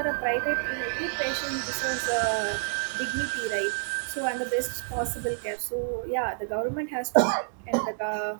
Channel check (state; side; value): silent; left; 59 dB below the other